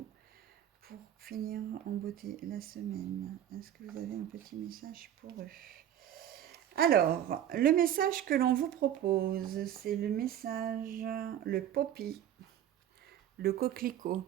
pour finir en beauté la semaine. Est-ce que vous avez un petit message pour eux? Alors, le message que l'on vous propose, c'est le message, le poppy, le coquelicot.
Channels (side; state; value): left; quieter; 10.8 dB